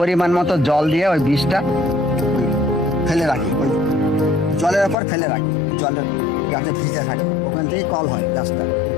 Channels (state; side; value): drops out; right; at 5.0 s